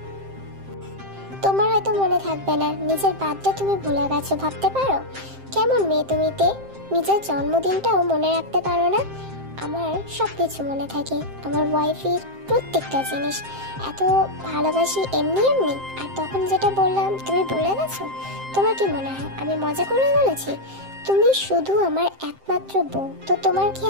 তোমার হয়তো মনে থাকবে না, নিজের বার্থডে তুমি ভুলে গেছো, ভাবতে পারো? কেমন মেয়ে তুমি তে, নিজের জন্মদিনটাও মনে রাখতে পারো না? আমার সব কিছু মনে থাকে, আমার ওয়াইফের প্রত্যেকটা জিনিস। এত ভালোবাসি এমনি এমনি। আর তখন যেটা বললাম তুমি ভুলে গেছো? তোমার কি মনে হয় আমি মজা করে বলেছি? তুমি শুধু আমার একমাত্র বউ, তো তোমার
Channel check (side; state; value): left; late; 7.6 ms